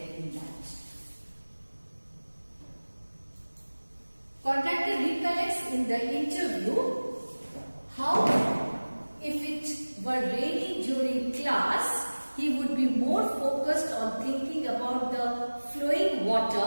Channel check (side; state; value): both; inverted; correlation -1.00